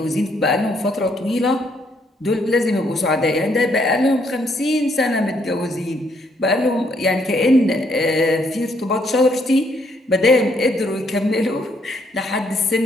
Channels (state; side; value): normal; both; correlation 0.71